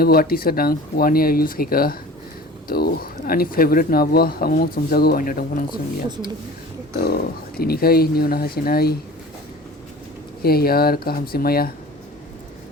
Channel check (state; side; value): normal; both; correlation 0.41